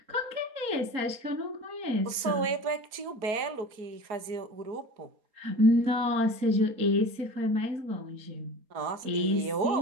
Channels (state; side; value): late; left; 4.3 ms